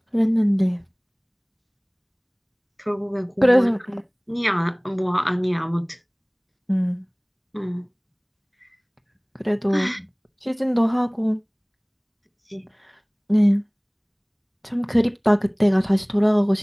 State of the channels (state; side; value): identical; both; correlation 1.00